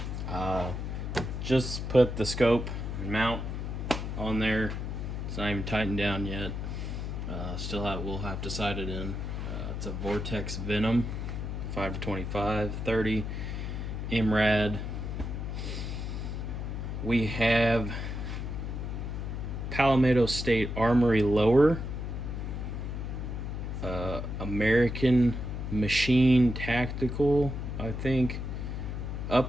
Just put the scope and mount on there. It's not even tightened down yet. We'll have to sight it in. It's a Vortex Venom 5-25, 30 MRAD. We have Palmetto State Armory lower, American Machine Tactical, I think,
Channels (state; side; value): noise; left; hum, 4 dB below the sound